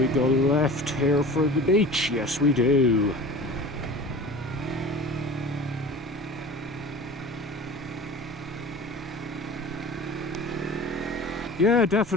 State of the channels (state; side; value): normal; both; correlation 0.38